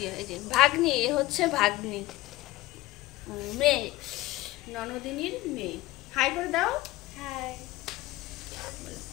এই যে ভাগ্নি, এ হচ্ছে ভাগ্নি, মেয়ে, ননদিনীর মেয়ে। হাই করে দাও। হাই।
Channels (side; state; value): right; quieter; 18.0 dB